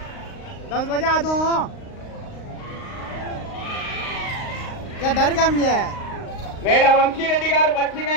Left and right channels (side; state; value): right; late; 38 ms